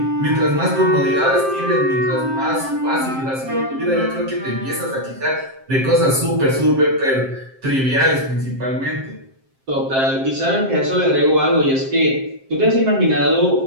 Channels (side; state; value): left; late; 7.6 ms